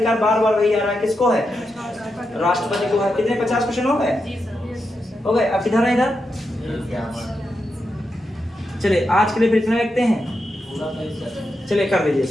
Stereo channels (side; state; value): both; normal; correlation 0.86